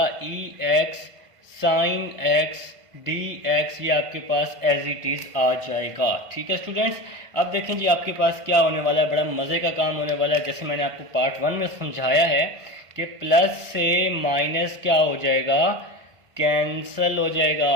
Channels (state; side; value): late; left; 1.5 ms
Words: e x sine x d x ये आपके पास एज इट इज आ जाएगा, ठीक है स्टूडेंट्स। अब देखें जी आपके पास क्या होने वाला है, बड़ा मज़े का काम होने वाला है। जैसे मैंने आपको पार्ट 1 में समझाया है कि प्लस से माइनस क्या हो जाएगा, कैंसल हो